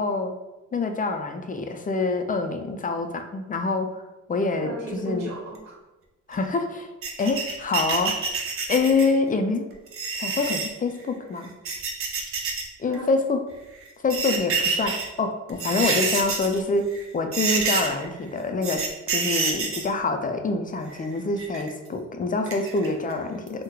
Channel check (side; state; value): both; normal; correlation 0.21